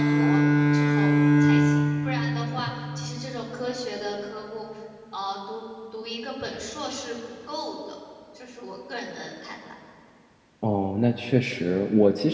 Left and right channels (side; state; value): both; identical; correlation 1.00